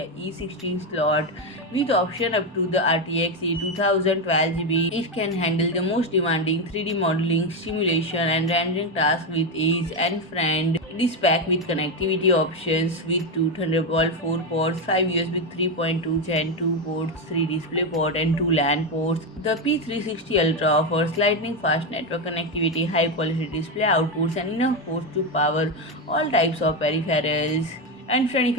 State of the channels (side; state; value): both; normal; correlation 0.10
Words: 16 slot with option up to the RTX A2000 12GB. It can handle the most demanding 3D modeling, simulation, and rendering tasks with ease. And friend, it is packed with connectivity options with two Thunderbolt 4 ports, 5 USB 3.2 Gen 2 ports, 3 DisplayPort, and 2 LAN ports. The P360 Ultra offers lightning fast network connectivity, high quality display outputs, and enough ports to power all types of peripherals. And friend, if